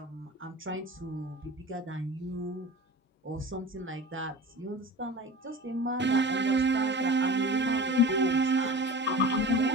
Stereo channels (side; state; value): both; normal; correlation 0.35